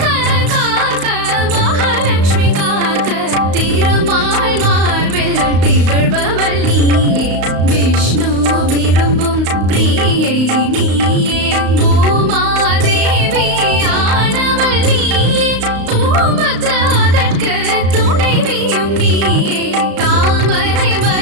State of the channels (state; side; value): late; left; 35 ms